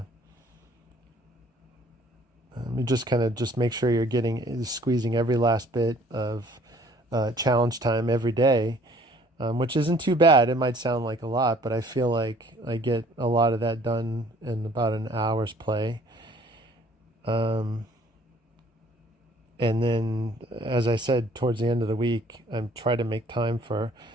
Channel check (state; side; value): normal; both; correlation 0.57